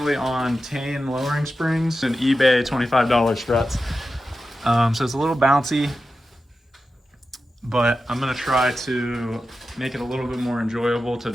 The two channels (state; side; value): normal; both; correlation 0.92